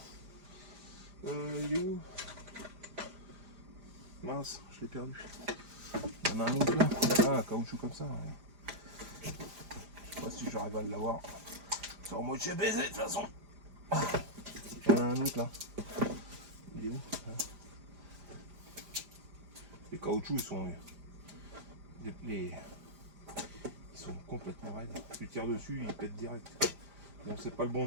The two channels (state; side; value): late; left; 5.0 ms